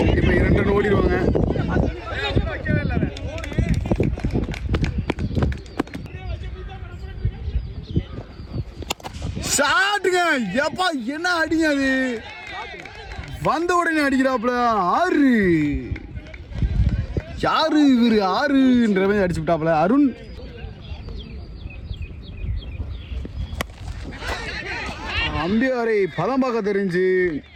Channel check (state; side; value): identical; both; correlation 1.00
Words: இப்போ 2 ரன் ஓடிடுவாங்க. ஷாட்டுங்க. எப்பா என்ன அடிங்க அது, வந்த உடனே அடிக்கிறாப்புல. 6. யாரு இவரு 6ன்ற மாதிரி அடிச்சு விட்டாப்புல. அருண். அம்பியாரை பதம் பார்க்க தெரிஞ்சு